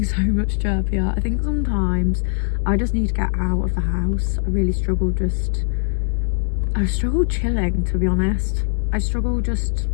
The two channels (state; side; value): silent; right; 62 dB below the other